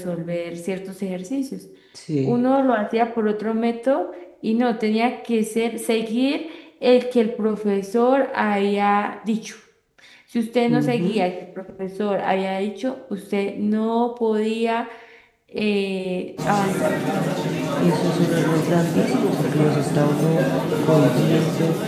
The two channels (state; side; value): identical; both; correlation 1.00